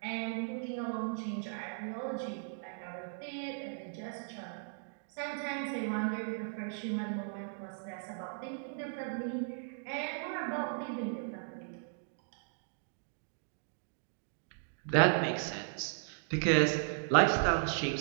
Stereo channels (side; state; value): left; silent; digital silence